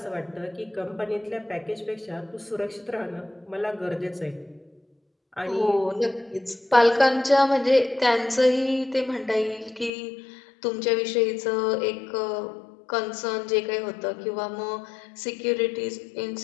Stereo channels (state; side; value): drops out; right; at 9.9 s